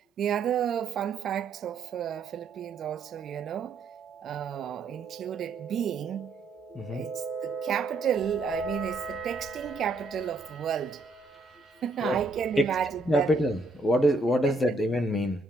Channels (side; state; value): left; quieter; 3.3 dB